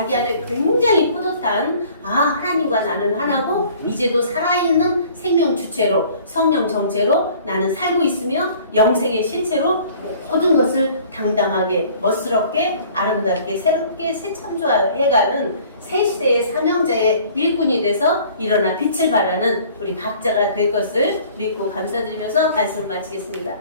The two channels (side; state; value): both; inverted; correlation -0.52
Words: 안에 굉장히 뿌듯한 하나님과 나는 하나고 이제도 살아있는 생명주체로 성령정체로 나는 살고 있으며 영생의 실체로 모든 것을 당당하게 멋스럽게 아름답게 새롭게 새 창조해가는 새 시대의 사명자의 일꾼이 돼서 일어나 빛을 발하는 우리 각자가 될 것을 믿고 감사드리면서 말씀을 마치겠습니다.